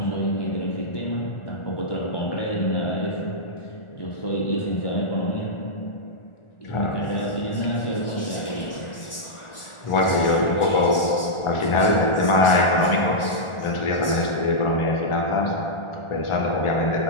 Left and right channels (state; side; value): late; right; 1.4 ms